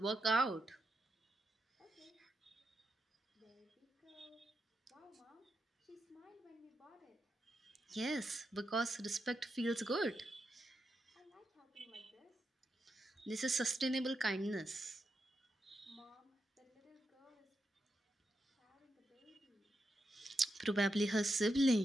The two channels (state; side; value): normal; both; correlation 0.85